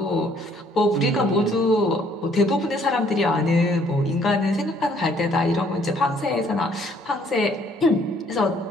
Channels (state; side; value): normal; both; correlation 0.63